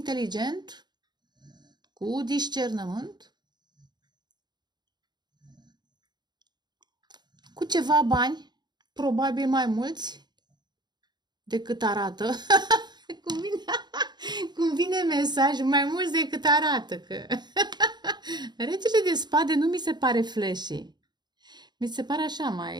cu discernământ, cu ceva bani, probabil mai mulți decât arată. Cum vine mesaj, mai mulți decât arată. Că... Regele de spade nu mi se pare flashy. Mi se pare așa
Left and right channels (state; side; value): late; left; 0.21 ms